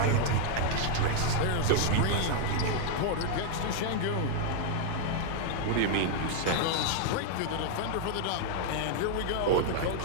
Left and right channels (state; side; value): different; both; correlation 0.00